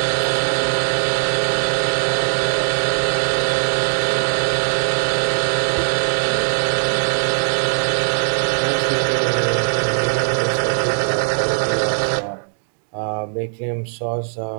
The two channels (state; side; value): silent; left; 64 dB below the other